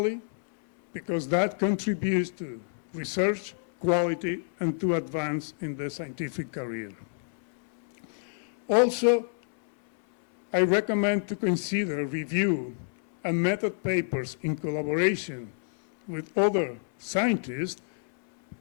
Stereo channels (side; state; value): right; silent; 59 dB below the other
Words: because that contributes to research quality and to advance in the scientific career. Also, I recommend to consider review and method papers in collaboration with other scientists